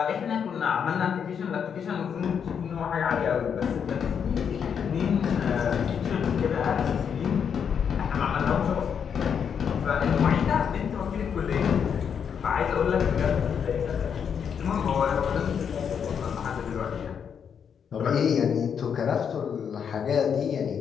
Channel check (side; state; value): right; quieter; 7.4 dB